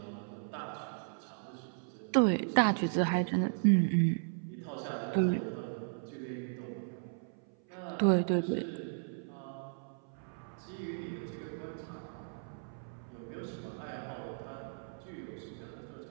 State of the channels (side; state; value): left; silent; 54 dB below the other